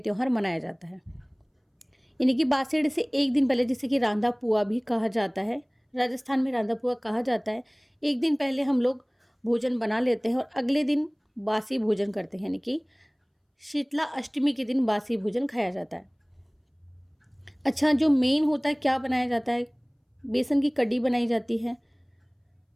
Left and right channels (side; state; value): both; identical; correlation 1.00